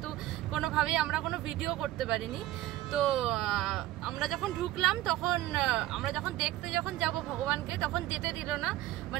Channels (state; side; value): quieter; left; 15.4 dB